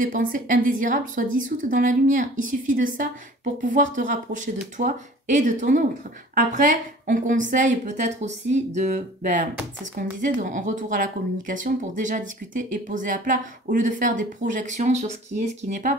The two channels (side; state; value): both; normal; correlation 0.47